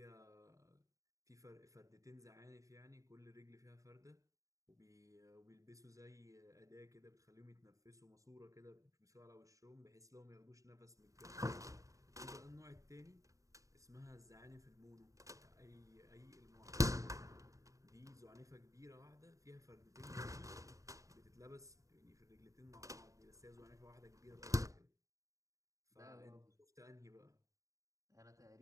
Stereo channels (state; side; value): late; left; 0.16 ms